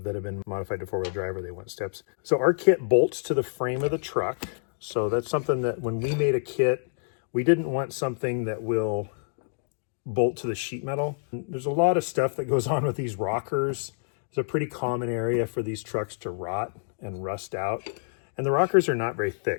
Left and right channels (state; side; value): silent; right; digital silence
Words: have been modified to 4-wheel drive, or they want steps. So our kit bolts to the frame of the truck. So that's something that when we made a kit, we didn't want something that will bolt to the sheet metal. There's a lot of stuff that goes on with these rockers. It's a pretty common area for these trucks to rot and rust out. And the rockers are not very